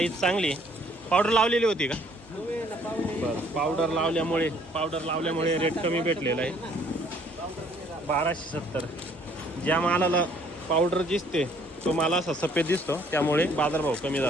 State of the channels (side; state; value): both; normal; correlation 0.62